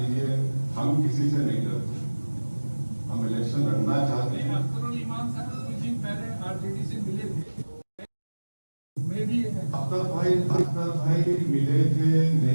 हम किसी से नहीं डरते, हम इलेक्शन लड़ना चाहते हैं। अख्तर इमाम साहब कुछ दिन पहले आरजेडी से मिले थे, मैं भी अख्तर भाई मिले थे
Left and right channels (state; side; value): inverted; both; correlation -1.00